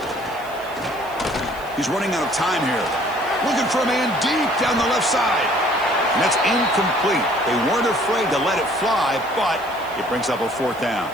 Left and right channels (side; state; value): right; noise; hiss, 22 dB below the sound